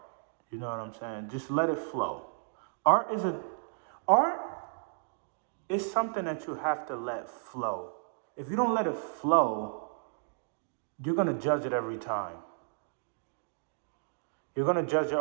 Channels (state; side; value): silent; left; digital silence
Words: You know what I'm saying? Just let it flow. Art is something that you have to let flow. If you don't let it flow, you're gonna judge it every time. You're gonna judge your